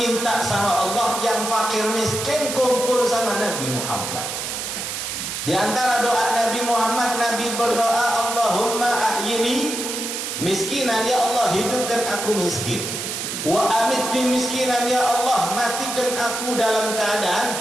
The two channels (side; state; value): right; noise; hiss, 4 dB below the sound